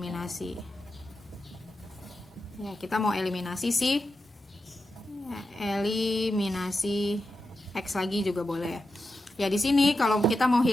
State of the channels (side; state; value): both; normal; correlation 0.89